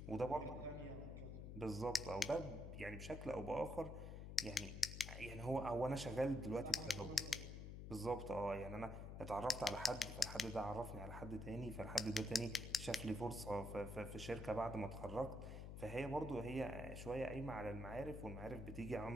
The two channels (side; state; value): left; noise; hum, 8 dB below the sound